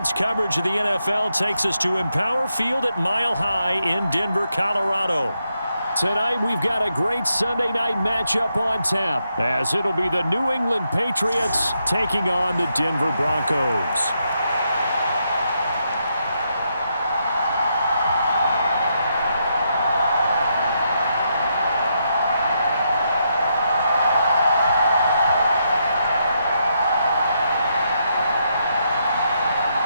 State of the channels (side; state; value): both; inverted; correlation -0.80